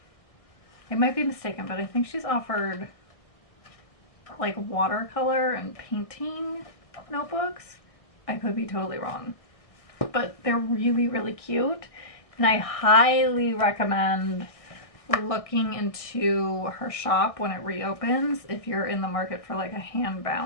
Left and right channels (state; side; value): late; right; 1.6 ms